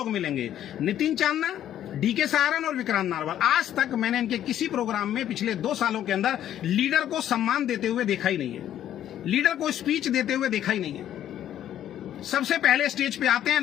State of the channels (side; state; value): right; quieter; 11.2 dB